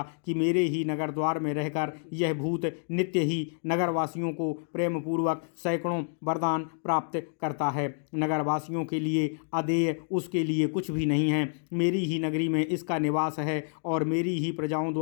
कि मेरे ही नगर द्वार में रहकर यह भूत नित्य ही नगरवासियों को प्रेम पूर्वक सैकड़ों वरदान प्राप्त करता है। नगरवासियों के लिए अदेय उसके लिए कुछ भी नहीं है। मेरी ही नगरी में इसका निवास है और मेरी ही प्रजाओं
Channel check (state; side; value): silent; right; 59 dB below the other